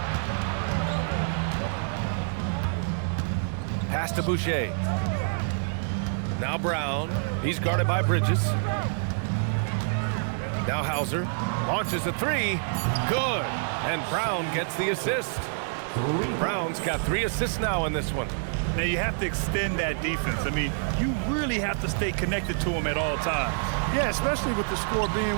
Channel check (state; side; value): silent; left; 60 dB below the other